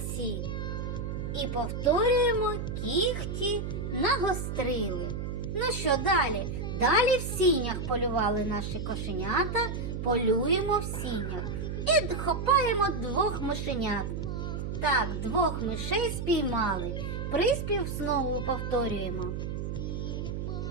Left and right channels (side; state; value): right; noise; hum, 4 dB below the sound